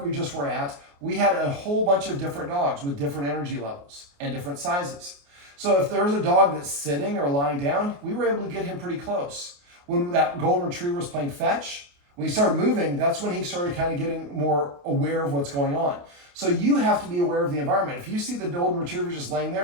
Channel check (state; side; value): late; left; 28 ms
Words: we just were at, we had a whole bunch of different dogs with different energy levels and different sizes. So if there's a dog that's sitting or lying down, we were able to get him pretty close. When that golden retriever was playing fetch, when he started moving, that's when he started kind of getting more aware of what's going on. So you have to be aware of the environment. If you see the golden retriever just laying